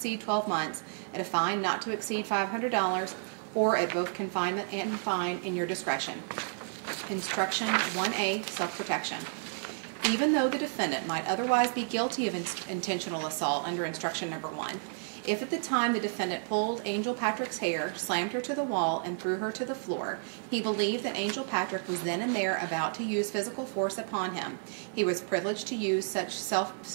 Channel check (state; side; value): silent; left; digital silence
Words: 12 months, at a fine not to exceed $500, or at both confinement and fine in your discretion. Instruction 1A, self-protection. Even though the defendant might otherwise be guilty of intentional assault under instruction number 1, if at the time the defendant pulled Angel Patrick's hair, slammed her to the wall, and threw her to the floor, he believed that Angel Patrick was then and there about to use physical force upon him, he was privileged to use